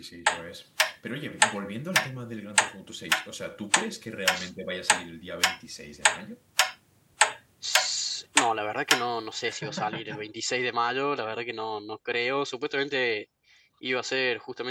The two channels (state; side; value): identical; both; correlation 1.00